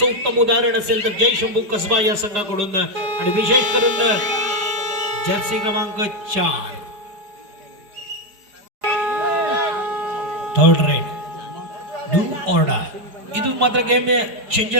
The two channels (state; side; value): late; left; 4.9 ms